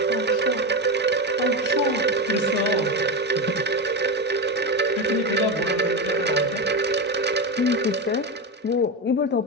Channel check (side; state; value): both; normal; correlation 0.16